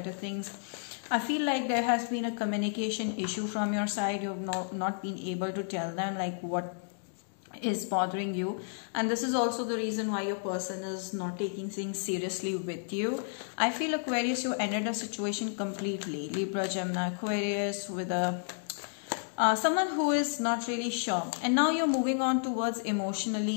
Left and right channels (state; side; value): silent; right; digital silence